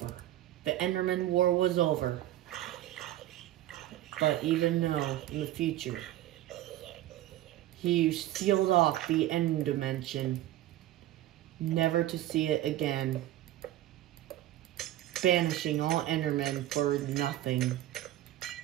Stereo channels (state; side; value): quieter; left; 14.0 dB